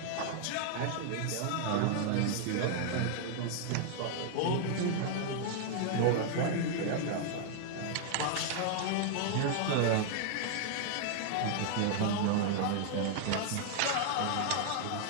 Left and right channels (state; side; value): different; both; correlation -0.01